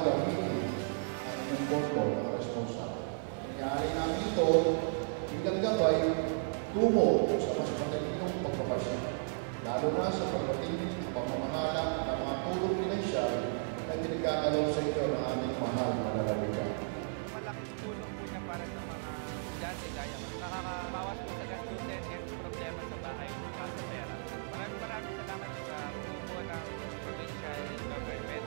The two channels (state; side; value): silent; left; 55 dB below the other